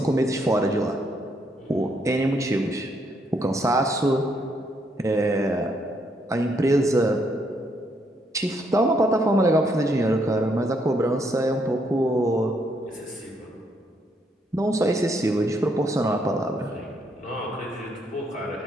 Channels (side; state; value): both; normal; correlation 0.73